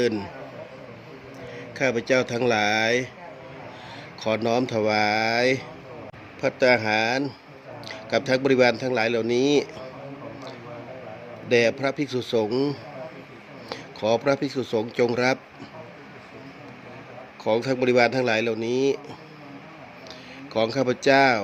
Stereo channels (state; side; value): identical; both; correlation 1.00